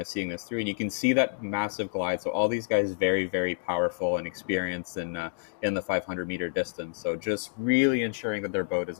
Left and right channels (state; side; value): silent; right; digital silence